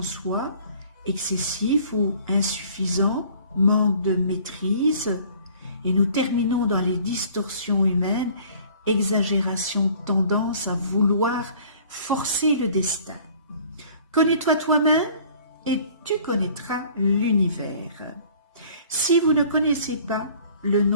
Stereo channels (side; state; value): both; inverted; correlation -0.52